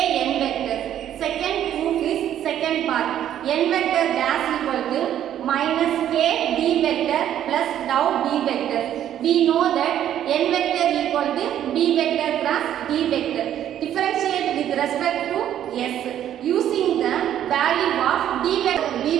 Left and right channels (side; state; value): left; quieter; 10.9 dB